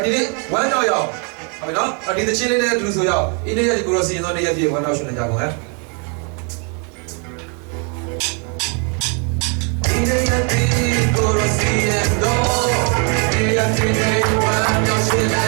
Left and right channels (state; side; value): quieter; left; 37.6 dB